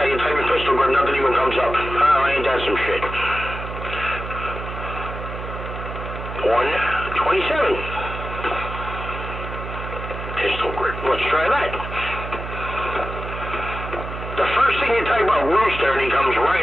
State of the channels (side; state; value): right; noise; hum, 8 dB below the sound